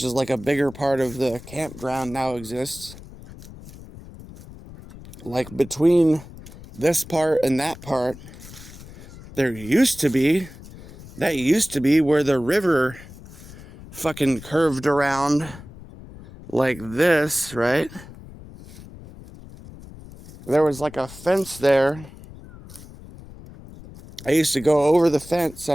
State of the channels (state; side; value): noise; left; rumble, 17 dB below the sound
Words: is like a bigger part of the campground, now exists, like between this part and that part, that used to be where the river fucking curved around like this, right? There was like a fence there I used to go over the fence